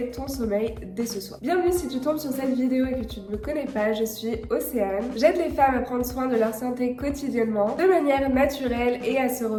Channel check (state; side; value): identical; both; correlation 1.00